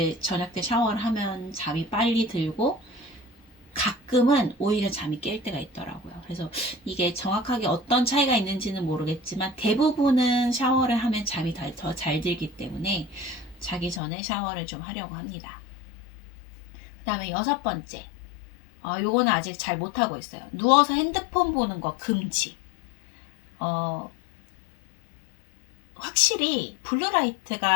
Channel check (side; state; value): right; drops out; at 14.0 s